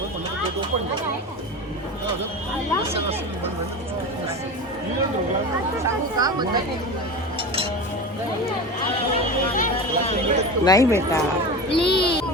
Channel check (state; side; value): normal; both; correlation 0.28